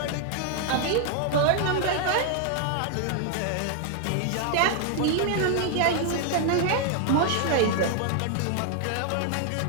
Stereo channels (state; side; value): different; both; correlation 0.00